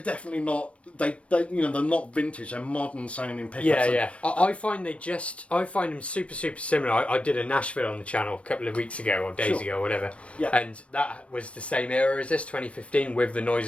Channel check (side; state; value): right; late; 0.062 ms